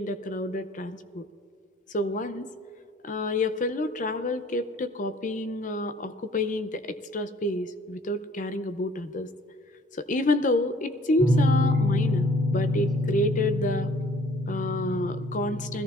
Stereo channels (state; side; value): normal; both; correlation 0.55